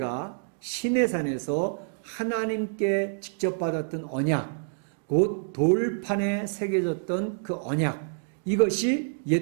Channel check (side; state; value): left; silent; digital silence